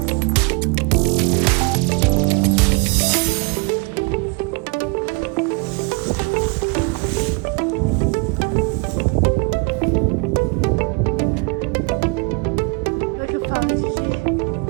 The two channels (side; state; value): left; quieter; 30.9 dB